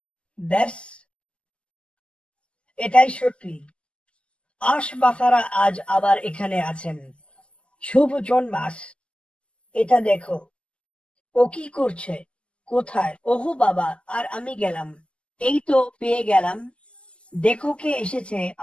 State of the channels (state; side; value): late; right; 0.053 ms